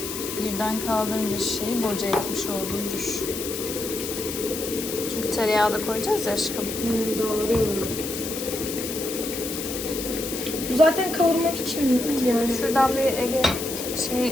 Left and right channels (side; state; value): left; noise; hiss, 6 dB below the sound